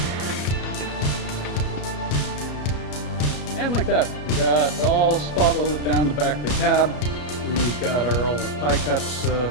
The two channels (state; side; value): late; right; 34 ms